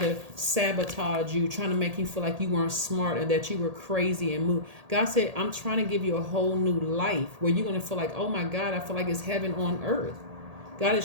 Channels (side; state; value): left; late; 1.8 ms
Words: sabotage you, trying to make you feel like you weren't smart and that you were crazy and move. God said, I'm trying to give you a whole new life where you're going to feel like, oh my God, I feel like it's heaven on earth. God